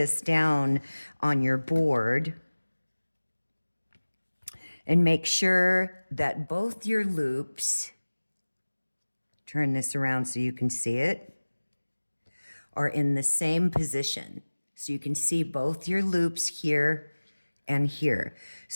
down on your board and make sure that both your loops, turn this around so you can see it, are in the same position. So you can see both your loops here and here.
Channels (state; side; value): inverted; both; correlation -1.00